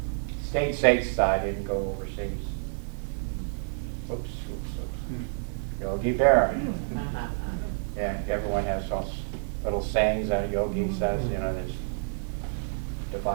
Stayed stateside, didn't go overseas. Oops. Yogi Berra. Yeah, everyone has those little sayings that Yogi says, there's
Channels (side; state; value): left; silent; digital silence